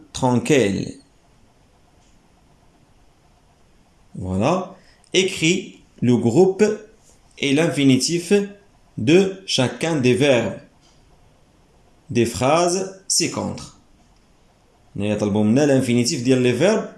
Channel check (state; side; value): identical; both; correlation 1.00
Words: tranquilles. Voilà. Écris le groupe et l'infinitif de chacun des verbes. Des phrases ci-contre. نطلبوا منا l'infinitif ديال les verbes